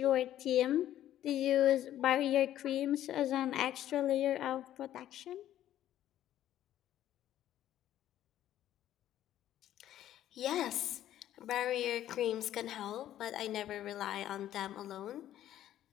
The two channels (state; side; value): quieter; right; 12.3 dB